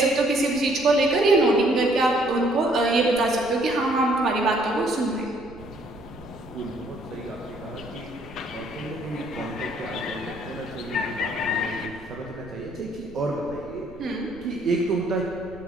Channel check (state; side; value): noise; right; rumble, 20 dB below the sound